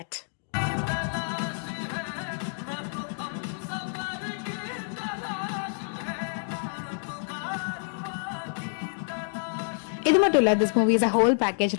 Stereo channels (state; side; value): silent; right; digital silence